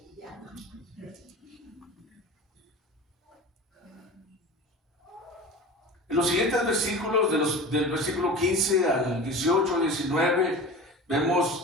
En los siguientes versículos, del versículo 15 al 18, 19,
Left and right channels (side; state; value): both; normal; correlation 0.34